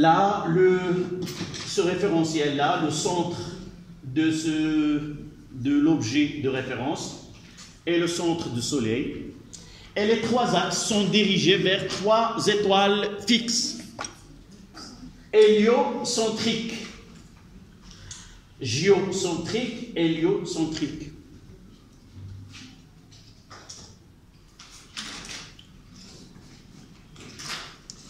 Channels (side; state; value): both; identical; correlation 1.00